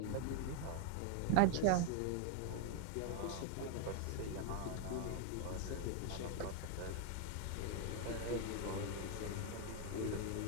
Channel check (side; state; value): both; different; correlation 0.00